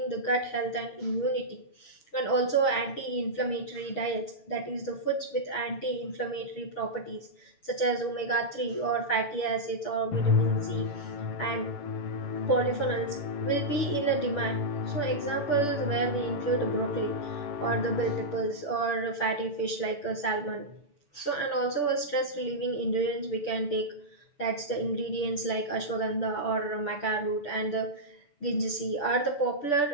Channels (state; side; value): late; right; 6.9 ms